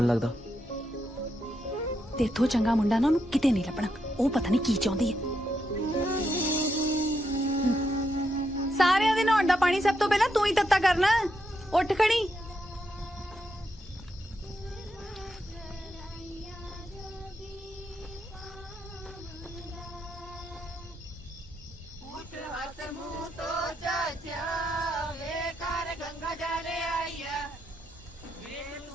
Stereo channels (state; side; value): normal; both; correlation 0.81